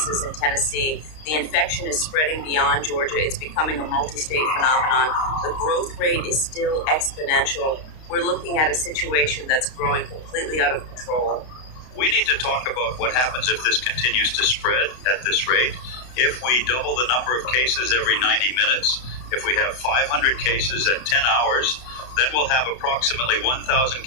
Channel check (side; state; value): right; late; 32 ms